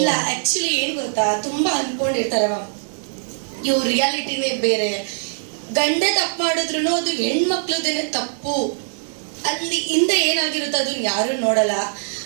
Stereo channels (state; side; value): silent; left; digital silence